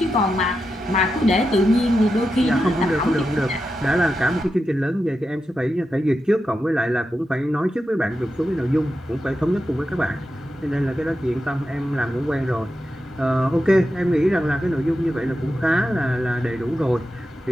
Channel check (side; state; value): both; normal; correlation 0.89